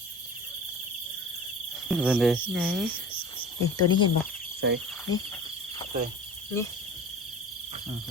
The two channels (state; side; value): normal; both; correlation 0.38